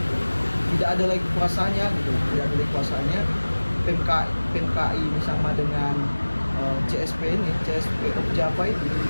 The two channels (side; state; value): both; inverted; correlation -1.00